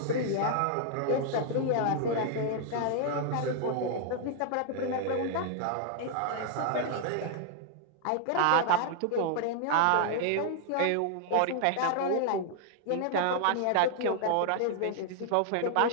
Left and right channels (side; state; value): both; different; correlation 0.00